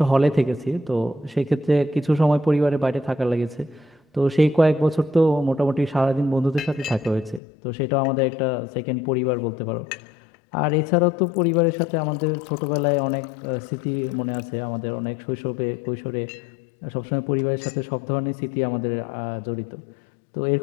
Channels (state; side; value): drops out; right; at 7.4 s